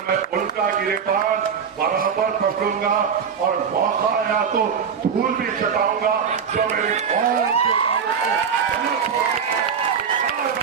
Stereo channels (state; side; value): quieter; left; 6.9 dB